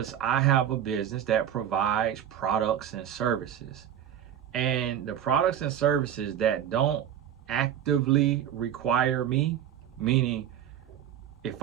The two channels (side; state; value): left; quieter; 10.1 dB